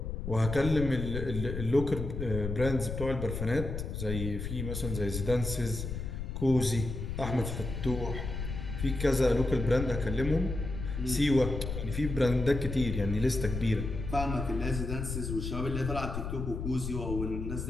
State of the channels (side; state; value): left; noise; rumble, 5 dB below the sound